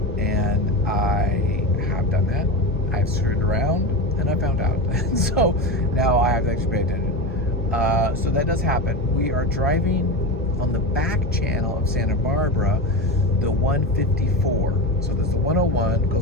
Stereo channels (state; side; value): normal; both; correlation 0.21